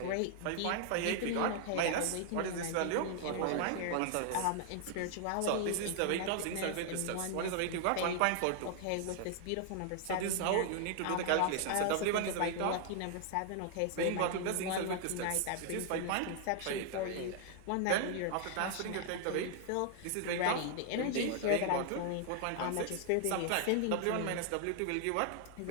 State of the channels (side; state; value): both; different; correlation 0.00